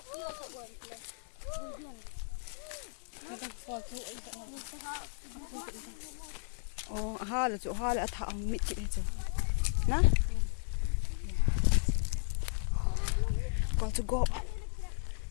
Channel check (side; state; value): right; silent; digital silence